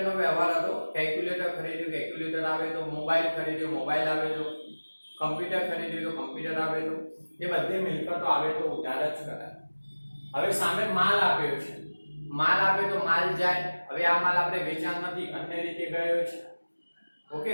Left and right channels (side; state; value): both; inverted; correlation -1.00